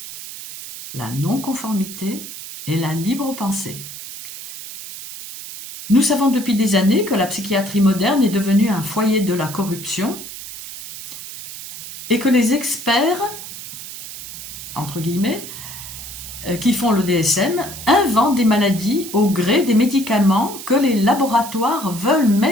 La non-conformité et la libre pensée. Nous savons depuis des années que la psychiatrie moderne est devenue un foyer de la corruption et que les experts, entre guillemets, qui font le DSM, inventent des maladies au gré des médicaments que les laboratoires veulent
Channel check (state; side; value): noise; right; hiss, 11 dB below the sound